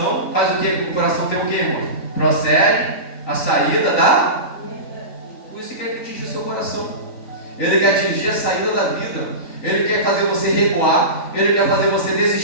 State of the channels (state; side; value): late; right; 3.9 ms